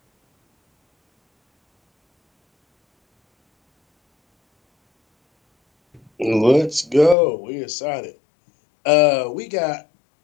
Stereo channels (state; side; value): drops out; right; at 7.2 s